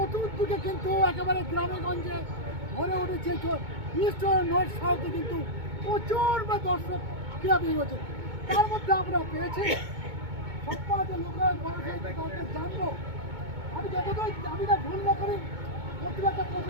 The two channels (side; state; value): left; late; 2.2 ms